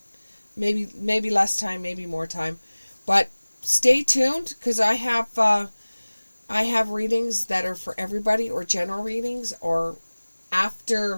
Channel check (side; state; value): both; inverted; correlation -1.00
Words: Maybe less time, maybe more time. But stay tuned, because I have readings that are for everybody, or general readings, or